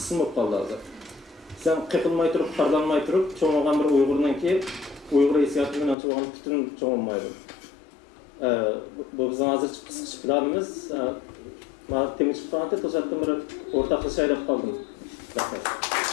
olup kaldı hazır. Sen qeqilmay turib, xarlanmay turib, çoğunluğun bir Uygurdan ki Uygur hissiyatından çoğunluğun bütün çoğunmaydı. Bu bizim hazır kısık planımız. Temiz tutanatı to'satdan bir o'rtaqlasha aylab qoldim.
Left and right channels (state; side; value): drops out; right; at 6.0 s